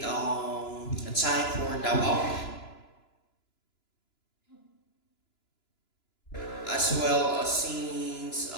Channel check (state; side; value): late; right; 2.9 ms